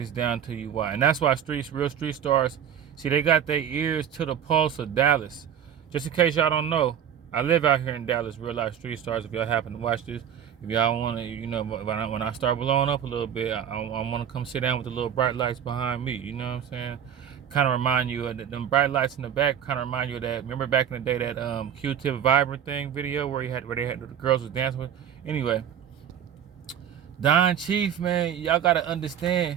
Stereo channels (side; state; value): left; quieter; 9.0 dB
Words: down to you why. And that's why real street stars, see, they got their ears to the pulse of Dallas. Just in case y'all don't know, I live out here in Dallas, real life street stars. If y'all happen to watch this, if y'all want to, you know, when I start blowing up a little bit, I want to come sit down with the little bright lights behind me. You know what I'm saying? Kind of remind you of them bright lights in the back. Kind of remind you of that. Remember back in the day that Q-Tip Vibrant thing video where the girls was dancing with. Anyway, Don Chief, man, y'all gotta